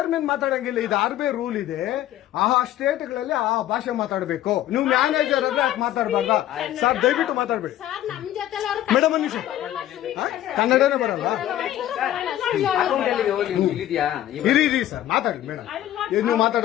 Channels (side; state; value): right; quieter; 12.9 dB